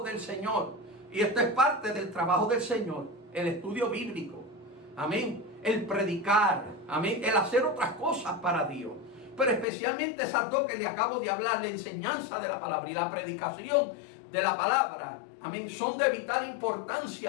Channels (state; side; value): drops out; right; at 9.7 s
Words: del Señor. Y esto es parte del trabajo del Señor, el estudio bíblico, amén, el predicar, amén, el hacer otras cosas para Dios. Pero especialmente esas dos que le acabo de hablar, la enseñanza de la palabra y la predicación de la palabra, amén, son de vital